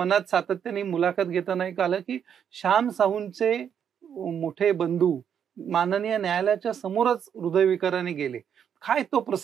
सातत्याने मुलाखत घेताना एक आलं की श्याम साहूंचे मोठे बंधू माननीय न्यायालयाच्या समोरच हृदयविकाराने गेले. काय तो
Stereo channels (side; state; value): left; quieter; 8.3 dB